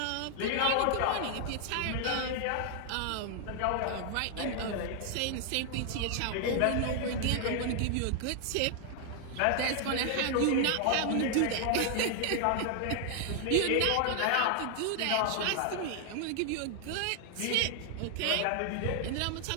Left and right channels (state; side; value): different; both; correlation 0.00